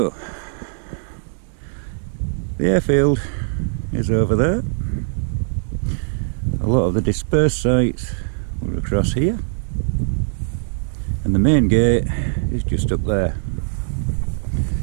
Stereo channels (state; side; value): silent; left; 65 dB below the other